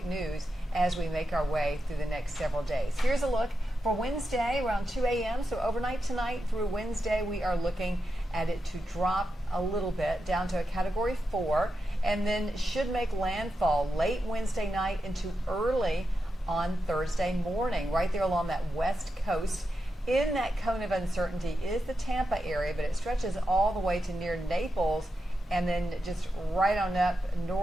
news as we make our way through the next several days. Here's a look for Wednesday around 2 a.m. So overnight tonight through Wednesday, we are looking at it to drop a little bit down to a Category 4, and then should make landfall late Wednesday night into early on Thursday morning, right there along that west coast. In that cone of uncertainty is the Tampa area, but it stretches all the way to near Naples and then just right on up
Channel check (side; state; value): both; normal; correlation 0.88